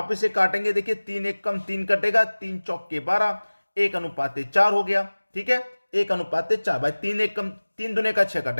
इसे काटेंगे। देखिए 3 एक कम 3 कटेगा, 3 चौक के 12, 1 अनुपाते 4 हो गया, ठीक है, 1 अनुपाते 4 भाई, 3 एक कम 3 दुने का 6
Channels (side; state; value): both; inverted; correlation -1.00